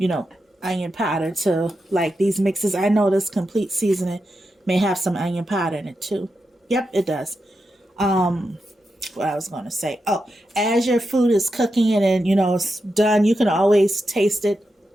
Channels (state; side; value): normal; both; correlation 0.88